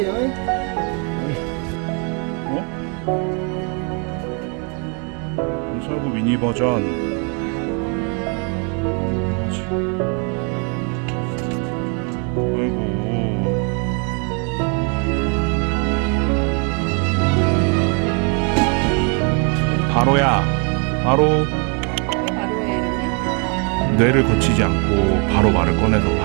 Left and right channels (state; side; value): quieter; left; 36.8 dB